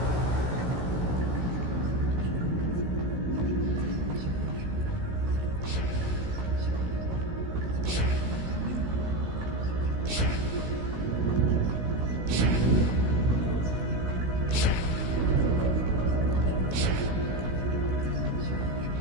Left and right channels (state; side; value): late; left; 16 ms